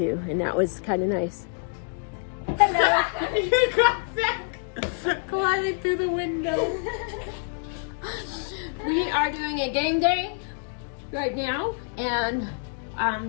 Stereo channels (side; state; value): right; silent; 57 dB below the other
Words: and that was kind of nice. Hello. You got back climbing through the window. We are doing a game day right now, and